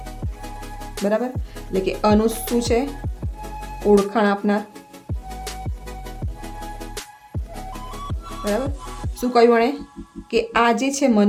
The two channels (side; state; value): both; identical; correlation 1.00